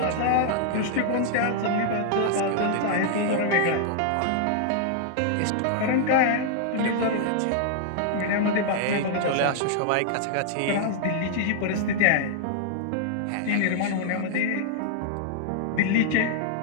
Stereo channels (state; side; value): different; both; correlation -0.01